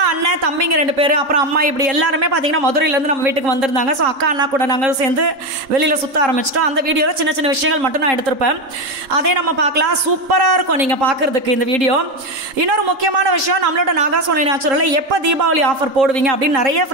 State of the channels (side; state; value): left; late; 3.8 ms